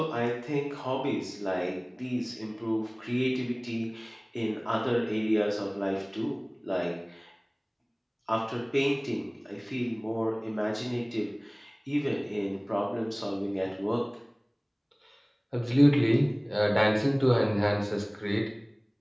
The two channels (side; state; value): both; identical; correlation 1.00